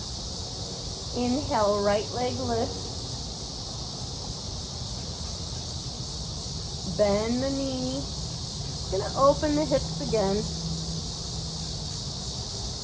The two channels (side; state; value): both; identical; correlation 1.00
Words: Inhale, right leg lifts. Bend the knee. Gonna open the hips again.